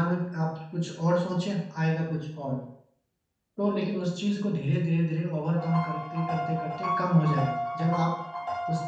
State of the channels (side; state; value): both; identical; correlation 1.00